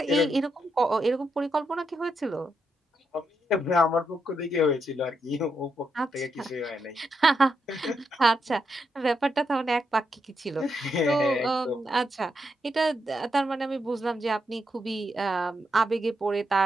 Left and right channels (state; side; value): normal; both; correlation 0.82